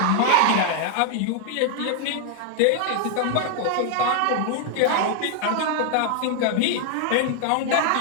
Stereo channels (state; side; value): different; both; correlation 0.00